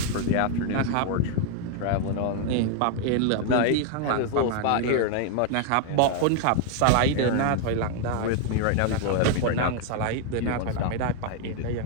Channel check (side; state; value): both; different; correlation 0.00